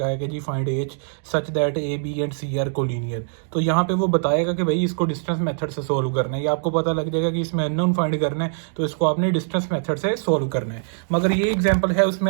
है कि जी find H such that A B and C are collinear. तो यहाँ पे वो बताएगा कि भाई इसको डिस्टेंस मेथड से सोल्व करना है। ये आपको पता लग जाएगा कि इसमें अननोन फाइंड करना है, तो इसको आपने डिस्टेंस मेथड से सोल्व करना है। मगर ये एग्जाम्पल है,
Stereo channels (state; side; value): silent; left; 64 dB below the other